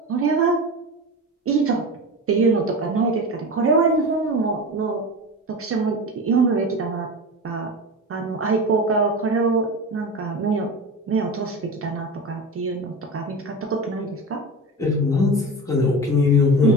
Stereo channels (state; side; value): normal; both; correlation 0.28